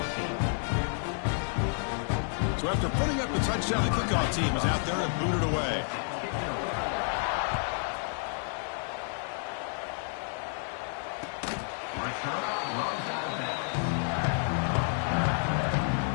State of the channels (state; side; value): silent; right; 58 dB below the other